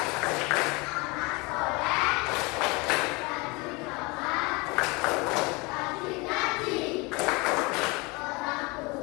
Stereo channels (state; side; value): quieter; right; 26.6 dB